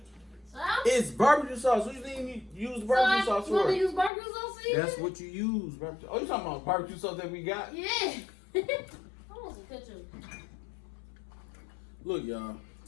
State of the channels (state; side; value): drops out; right; at 4.1 s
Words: So? It's barbecue sauce. What do you think you use barbecue sauce You want for? to use barbecue sauce for you? That's what you use. Barbecue. Oh, you talking about barbecue sauce that we got? Yeah. I want some ketchup. Look, y'all.